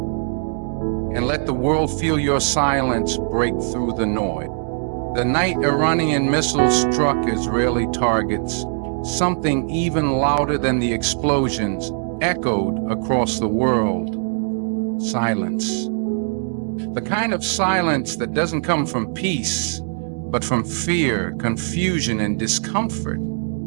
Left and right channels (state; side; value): silent; left; 65 dB below the other